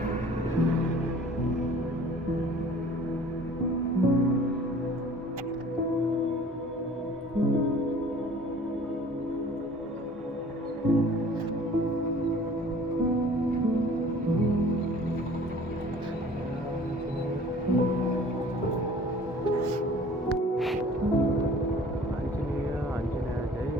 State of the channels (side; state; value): both; normal; correlation 0.49